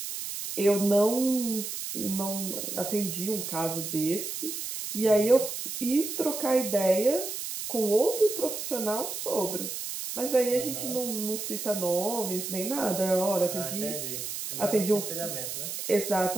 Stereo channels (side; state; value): right; noise; hiss, 6 dB below the sound